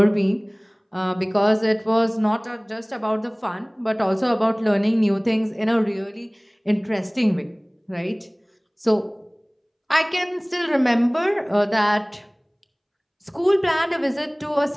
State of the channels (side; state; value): both; identical; correlation 1.00